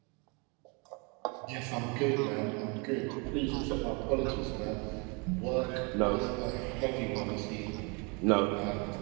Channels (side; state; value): left; quieter; 31.8 dB